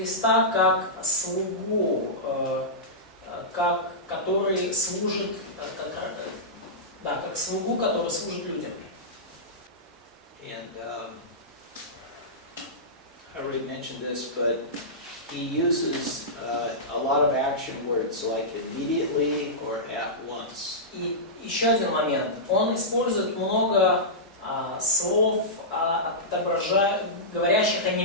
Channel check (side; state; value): both; normal; correlation -0.15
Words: как слугу, который служит, как слугу, который служит людям. And I already mentioned this, but he uses a lot of action words like immediately or at once. И еще один момент. Он использует много слов, говорящих о